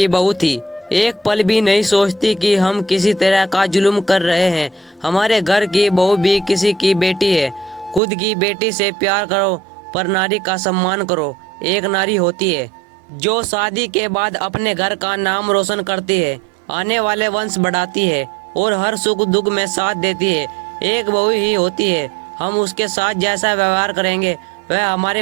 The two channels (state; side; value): drops out; left; at 8.0 s